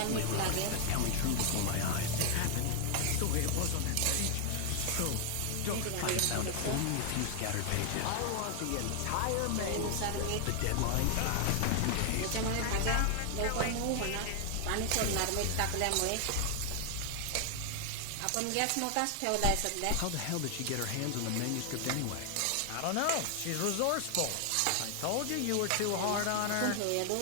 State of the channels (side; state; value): both; different; correlation 0.00